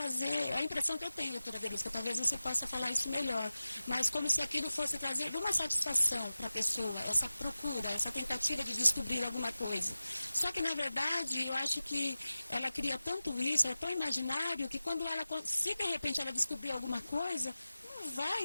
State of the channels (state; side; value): inverted; both; correlation -0.96